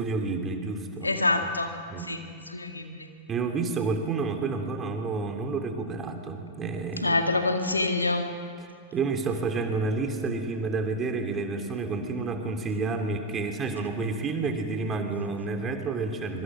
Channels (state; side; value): normal; both; correlation -0.01